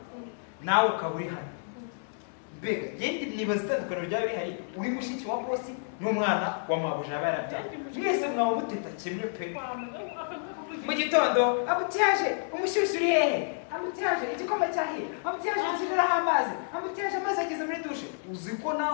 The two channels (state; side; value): silent; right; digital silence